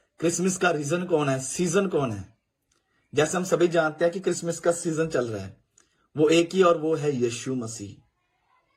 क्रिसमस का रीजन कौन है? सीजन कौन है? जैसे हम सभी जानते हैं कि क्रिसमस का सीजन चल रहा है, वो एक ही, और वो है यीशु मसीह।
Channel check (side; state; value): both; identical; correlation 1.00